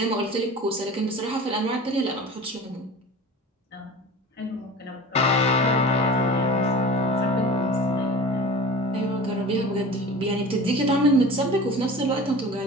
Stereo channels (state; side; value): normal; both; correlation 0.37